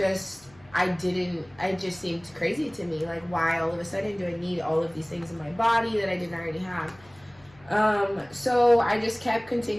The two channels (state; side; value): noise; left; hum, 27 dB below the sound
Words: seemed crazy to me. Like, why all of a sudden do I need all of these things in my body that I didn't already have? So I just kept